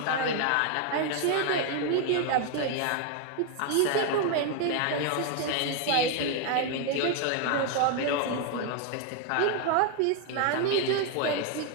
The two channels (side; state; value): both; different; correlation 0.01